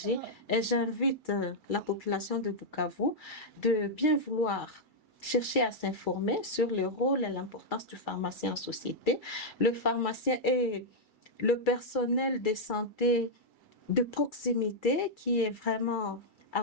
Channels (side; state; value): right; late; 2.3 ms